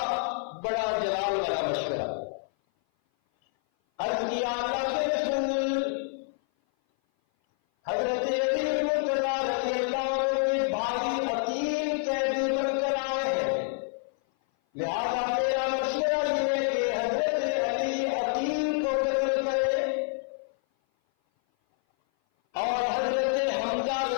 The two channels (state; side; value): silent; right; 56 dB below the other